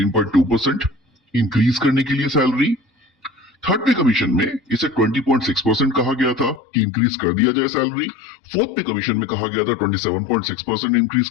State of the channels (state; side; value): drops out; right; at 6.6 s